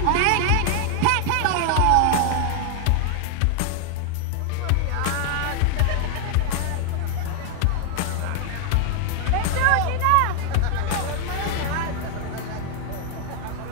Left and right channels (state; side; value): different; both; correlation 0.00